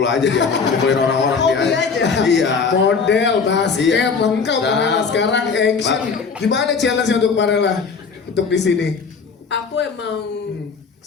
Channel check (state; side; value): quieter; right; 5.3 dB